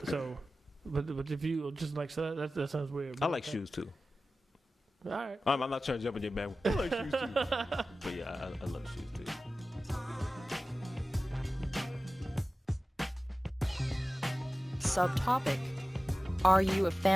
So, but if you just like, so that sounds weird. I like shoes too. All right. I'm not trying to jump in your bag. I like shoes too. But yeah, I love shoes too. Subtopic. Are you a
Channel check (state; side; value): normal; both; correlation 0.95